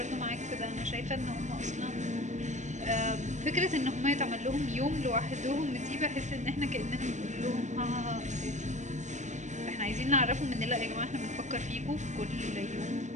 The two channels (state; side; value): late; left; 0.35 ms